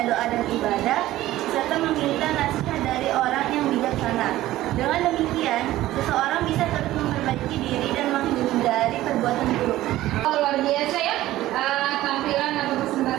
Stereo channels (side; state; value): left; quieter; 15.4 dB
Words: doa dan ibadah, serta meminta nasihat dari orang yang bijaksana. Dengan demikian, seseorang bisa terus memperbaiki diri dan menghindari perbuatan buruk. Luar biasa ya tampilan atau